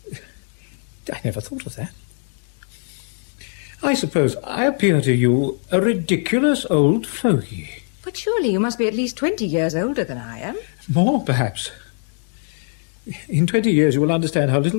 I never thought of that. I suppose I appear to you a ridiculous old fogey. But surely you must be at least 20 years older than I am. More, perhaps. In 20 years you will understand how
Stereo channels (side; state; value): right; silent; 57 dB below the other